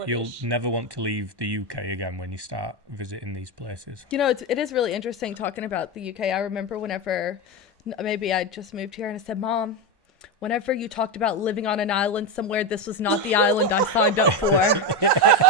You'll British. never want to leave the UK again when you start visiting these places. You know, it is really interesting talking about the UK. I remember whenever maybe I just moved here and I said, Mom, whenever you talked about living on an island somewhere, this was not the island I signed up for.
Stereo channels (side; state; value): left; late; 1.1 ms